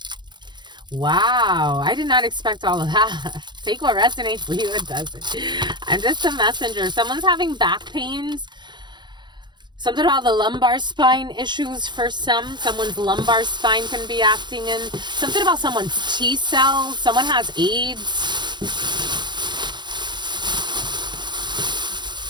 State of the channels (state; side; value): late; left; 0.22 ms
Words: Wow, I did not expect all of that. Take what resonates for you, it doesn't. I'm just a messenger. Someone's having back pains. Something about the lumbar spine issues for some. Someone's lumbar spine can be acting in. Something about someone's T cells. Someone has AIDS.